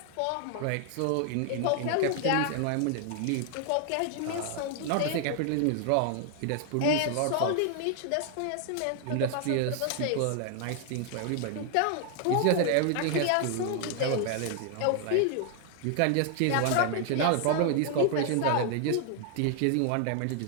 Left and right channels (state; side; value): different; both; correlation 0.00